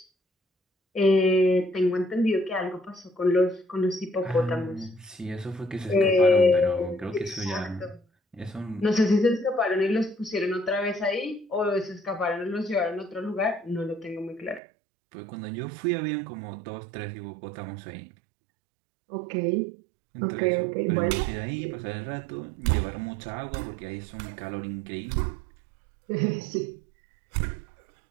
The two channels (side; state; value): left; drops out; at 14.6 s